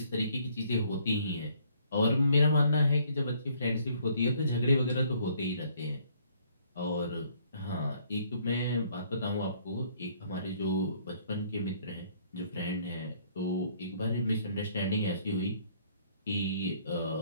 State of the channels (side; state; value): both; inverted; correlation -0.63